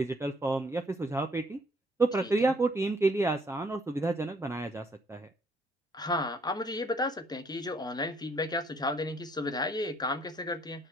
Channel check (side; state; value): both; normal; correlation 0.65